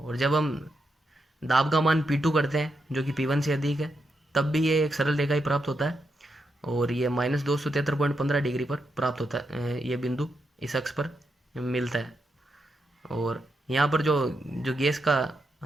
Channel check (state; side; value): normal; both; correlation 0.83